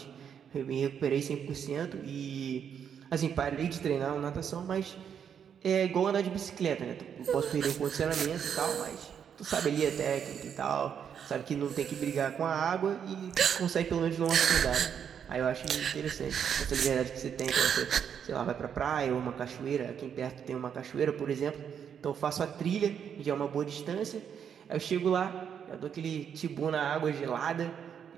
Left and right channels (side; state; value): left; quieter; 8.0 dB